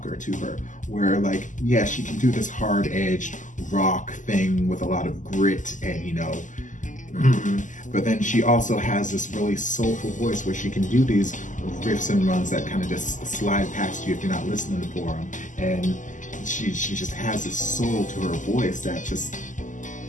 to her, where, like, yeah, she can do this hard-edged rock thing with a lot of grit and, you know, But then she also has this really soulful voice where she can do these riffs and runs that kind of just slide past you if you're not listening for them. And she just has this soul to her voice that just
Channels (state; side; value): late; right; 0.37 ms